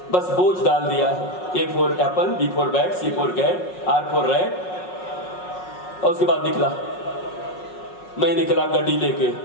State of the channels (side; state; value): right; late; 5.4 ms